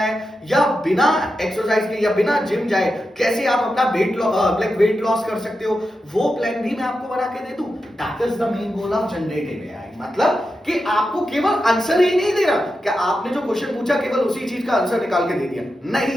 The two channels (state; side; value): normal; both; correlation 0.89